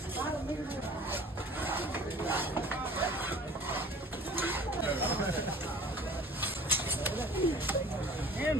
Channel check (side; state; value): both; normal; correlation 0.47